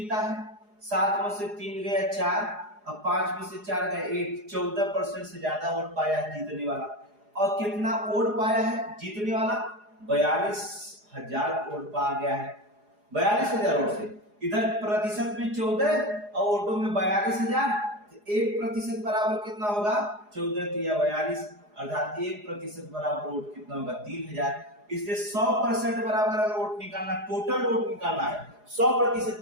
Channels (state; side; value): late; left; 4.8 ms